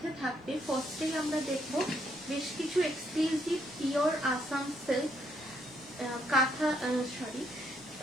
থাকবে, ফার্স্টেই আমরা দেখব বেশ কিছু exclusive pure Assam silk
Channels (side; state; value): both; normal; correlation 0.72